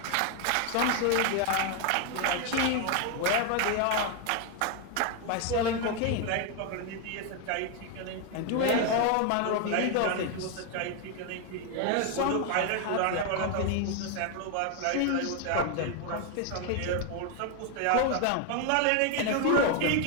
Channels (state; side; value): different; both; correlation 0.01